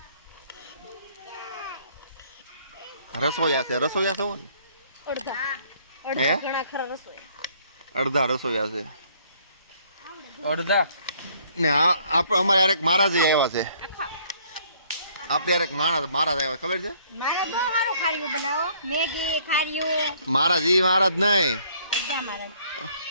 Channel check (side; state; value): both; inverted; correlation -0.62